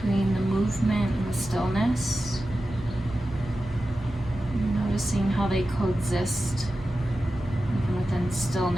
the movement and the stillness. Noticing how they coexist. Even within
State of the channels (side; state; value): both; normal; correlation 0.93